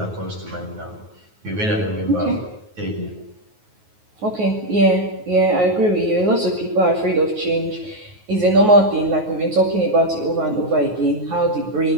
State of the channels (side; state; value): left; late; 9.4 ms